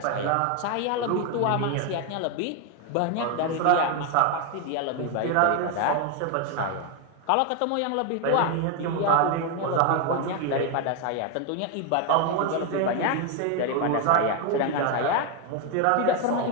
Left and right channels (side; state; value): both; different; correlation 0.01